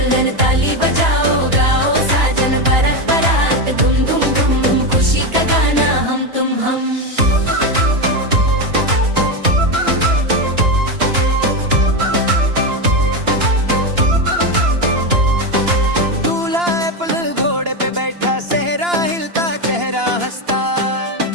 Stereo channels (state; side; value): late; left; 2.9 ms